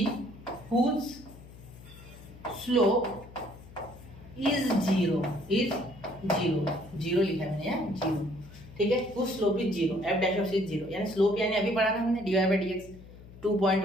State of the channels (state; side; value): noise; left; hum, 18 dB below the sound